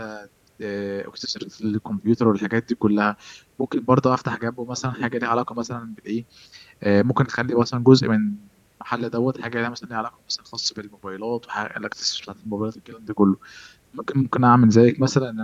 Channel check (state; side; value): identical; both; correlation 1.00